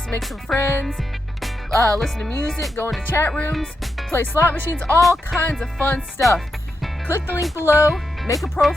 make some friends, listen to music, go into chat rooms, play slot machines, all kinds of fun stuff. Click the link below, make a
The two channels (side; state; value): both; normal; correlation 0.86